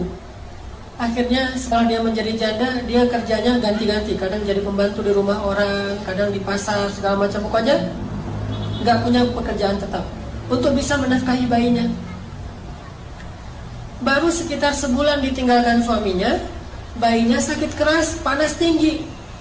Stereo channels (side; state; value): both; identical; correlation 1.00